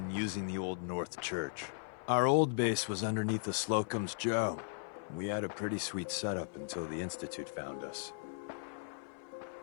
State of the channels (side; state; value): right; silent; 53 dB below the other